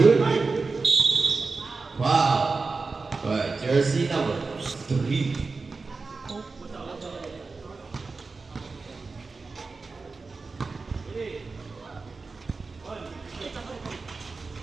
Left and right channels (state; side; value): quieter; left; 4.1 dB